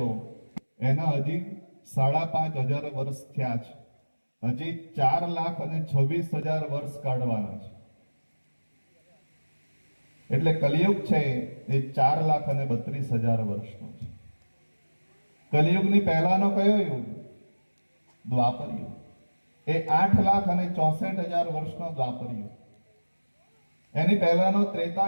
એના હજી 5,500 વર્ષ થયા છે. હજી 4,26,000 વર્ષ કાઢવાના છે. એટલે કલિયુગ છે એ 4,32,000 વર્ષનો છે. કલિયુગની પહેલાનો કયો યુગ? દ્વાપર યુગ. એ 8,64,000 વર્ષનો દ્વાપર યુગ. એની પહેલાનો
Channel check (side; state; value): both; inverted; correlation -1.00